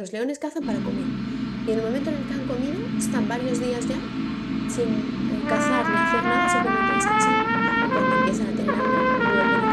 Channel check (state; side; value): identical; both; correlation 1.00